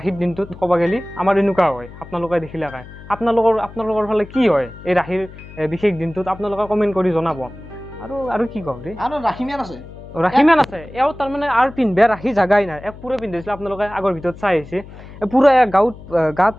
দিনটোত ক'ব গেলি আমাৰ এনেকুৱা হয় আপোনালোকে দেখিলে কাই আপোনালোকৰ ফালে কি হয় এই ৰাহিৰ বিশেষ দিনটোত আপোনালোকে কমেণ্ট কৰি জনাব আৰু কি কওঁ দেই আৰু ৰাখিমিয়ান আছে ৰাখি মান আছে এও তাৰমানে আৰু পিন্ধবা ৰাখি জাগাই নাই এক পুৰা পিন্ধিছিলে আপোনালোকে আগৰ ভিতৰত চাই আহিছে পুৰা গাত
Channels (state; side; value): noise; left; hum, 17 dB below the sound